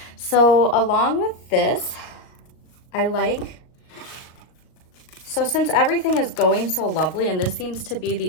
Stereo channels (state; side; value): late; right; 38 ms